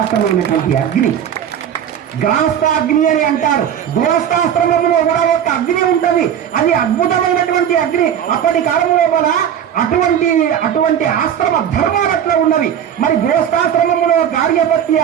అగ్ని. గ్రాస్తాగ్ని అని అంటారు. గృహస్థాశ్రమంలో కూడా ఒక అగ్ని ఉంటది. అది అద్భుతమైనటువంటి అగ్ని. అప్పటి కాలంలో కూడా అటువంటి ఆశ్రమ ధర్మాలు అట్లా ఉన్నవి. మరి గృహస్థాశ్రమంలో కార్యపత్య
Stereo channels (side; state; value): left; quieter; 9.3 dB